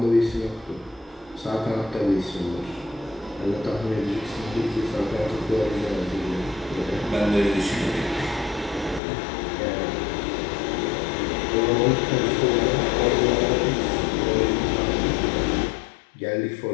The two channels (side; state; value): right; drops out; at 9.0 s